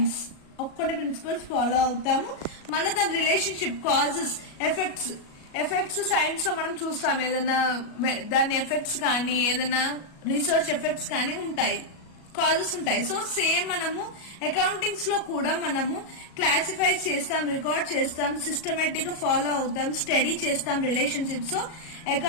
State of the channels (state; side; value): late; right; 37 ms